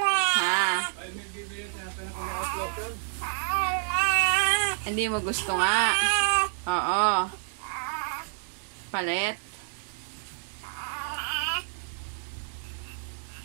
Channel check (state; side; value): silent; left; 58 dB below the other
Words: Ha? Hindi mo gusto nga. Oo. Palit.